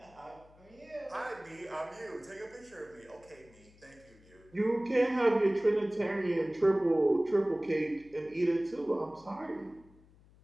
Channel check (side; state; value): left; noise; hum, 26 dB below the sound